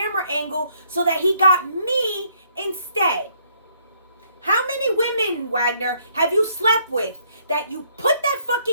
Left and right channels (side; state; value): both; inverted; correlation -0.68